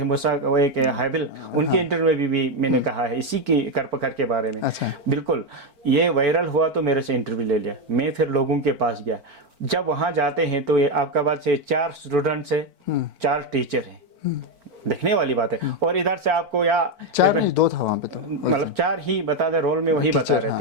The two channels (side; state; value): left; late; 4.4 ms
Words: मूसा, वो एक हाबिल, उनके इंटरव्यू में भी मैंने कहा है इसी की करपकर के बारे में। बिल्कुल, ये वायरल हुआ तो मेरे से इंटरव्यू ले लिया। मैं फिर लोगों के पास गया। जब वहाँ जाते हैं तो ये आपका बात से 4 स्टूडेंट्स है, 4 टीचर हैं, देखने वाली बात है। और इधर से आपको या 4 नहीं 2 था वहाँ पे, तो मतलब 4 ही बता दे, रोल में वही बता रहे